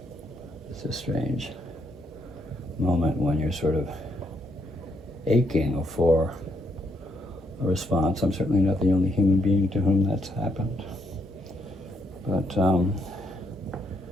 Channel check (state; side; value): normal; both; correlation 0.75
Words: it's a strange moment when you're sort of aching for a response. I'm certainly not the only human being to whom that's happened. But there